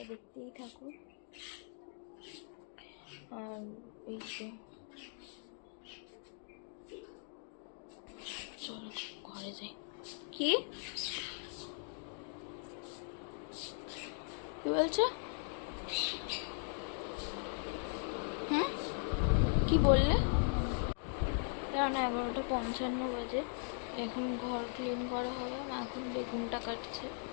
দেখতেই থাকো। আর এই তো চলো ঘরে যাই। কি বলছো? কি বললে? কারণ 11:55 বাজে, এখন ঘর ক্লিন করা হবে, মা এখন বেগুনটা কাটছে।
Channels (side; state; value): right; silent; 52 dB below the other